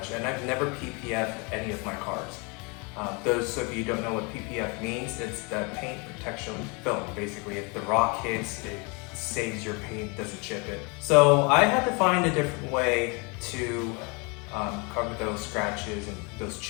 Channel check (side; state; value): right; quieter; 30.8 dB